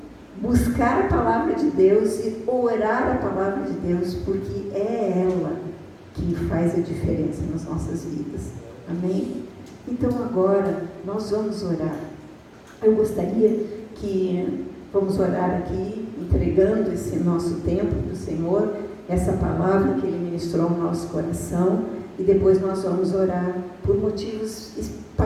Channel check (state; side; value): identical; both; correlation 1.00